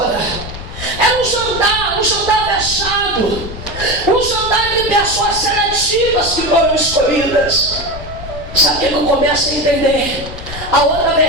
Era um jantar fechado, um jantar de pessoas seletivas que foram escolhidas. Sabe o que eu começo a entender? A outra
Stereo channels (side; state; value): left; noise; rumble, 11 dB below the sound